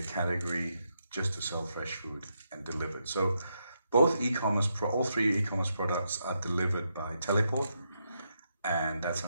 category just to sell fresh food and delivered. So both all three e-commerce products are delivered by Teleport, and that's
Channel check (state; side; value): inverted; both; correlation -0.81